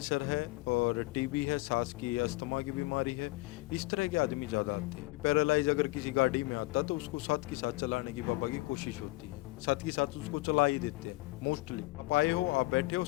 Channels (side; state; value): right; quieter; 21.5 dB